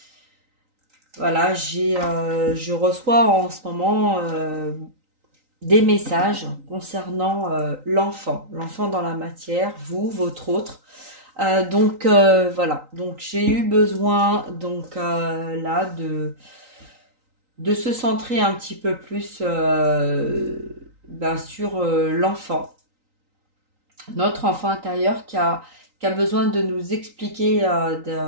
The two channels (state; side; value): late; left; 3.9 ms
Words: Voilà, je reçois en ce moment des messages concernant l'enfant dans la matière, vous, votre autre. Voilà, donc j'ai eu besoin là de se centrer un petit peu plus sur l'enfant, notre enfant intérieur qui a besoin de nous expliquer